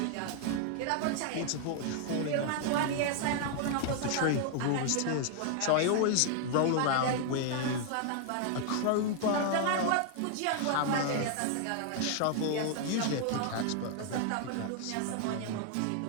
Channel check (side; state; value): both; different; correlation 0.00